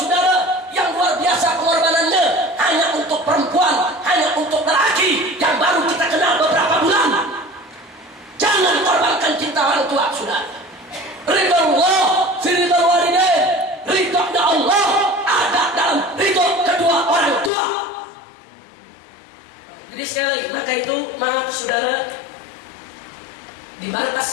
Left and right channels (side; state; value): right; drops out; at 17.5 s